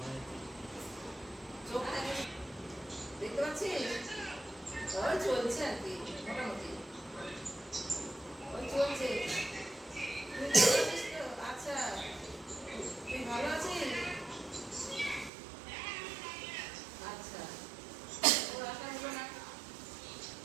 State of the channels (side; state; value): left; drops out; at 15.3 s